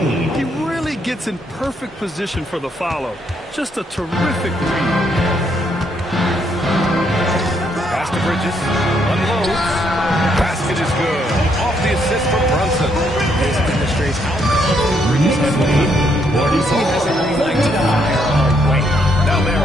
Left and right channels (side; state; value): both; normal; correlation 0.73